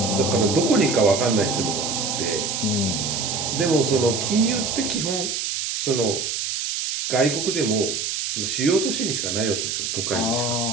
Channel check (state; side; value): noise; right; hiss, 2 dB below the sound